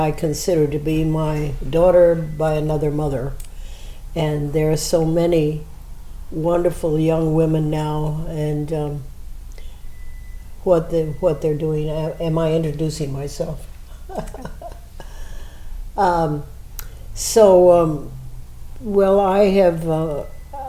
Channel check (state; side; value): identical; both; correlation 1.00